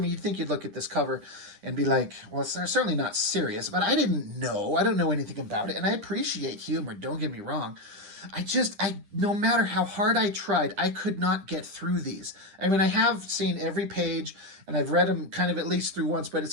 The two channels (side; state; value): left; late; 10 ms